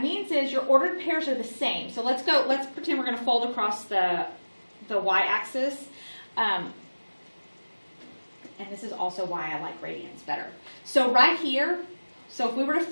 means is your ordered pairs are the same. So let's pretend we're going to fold across the y-axis. And this is also why I like radians better. So right here, so if we were to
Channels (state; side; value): inverted; both; correlation -1.00